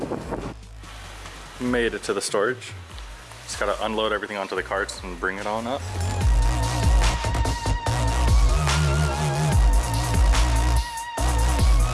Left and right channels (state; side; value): identical; both; correlation 1.00